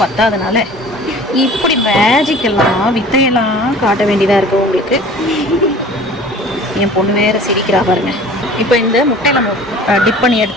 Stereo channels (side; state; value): both; normal; correlation 0.45